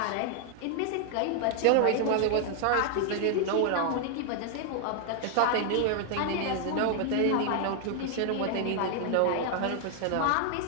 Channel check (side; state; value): both; different; correlation 0.00